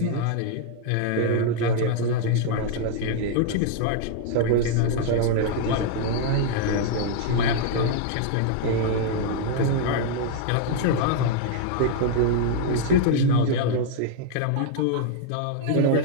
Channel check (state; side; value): different; both; correlation 0.00